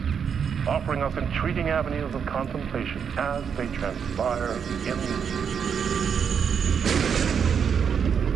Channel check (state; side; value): quieter; left; 7.1 dB